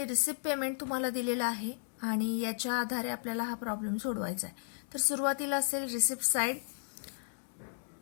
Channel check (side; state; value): right; silent; digital silence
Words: रिसिप्ट पेमेंट तुम्हाला दिलेला आहे आणि याच्या आधारे आपल्याला हा प्रॉब्लेम सोडवायचा आहे। तर सुरुवातीला असेल receipt side